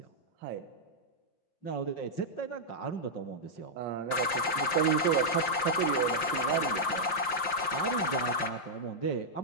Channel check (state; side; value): late; right; 5.7 ms